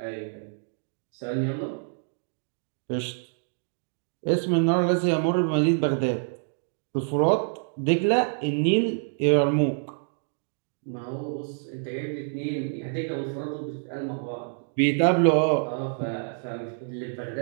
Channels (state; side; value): silent; left; digital silence